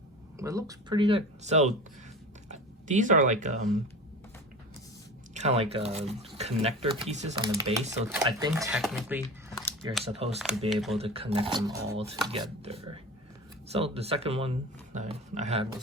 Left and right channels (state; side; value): normal; both; correlation 0.33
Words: But it looks pretty good. So these are like kind of like connector pieces on the base. So I think technically you're supposed to be able to connect them all together. So the second one I had